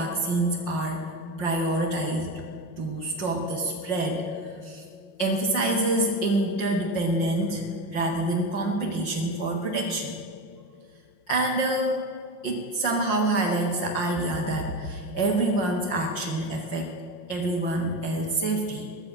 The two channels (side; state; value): right; late; 5.6 ms